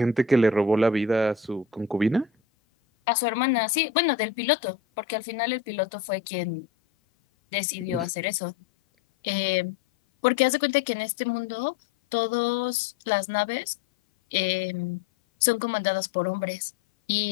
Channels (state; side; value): quieter; right; 5.5 dB